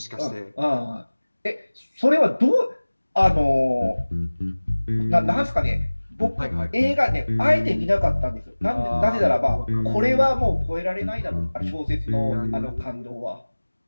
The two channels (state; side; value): inverted; both; correlation -1.00